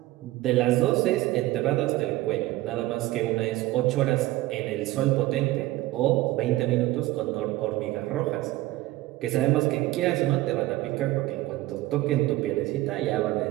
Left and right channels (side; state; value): left; quieter; 17.3 dB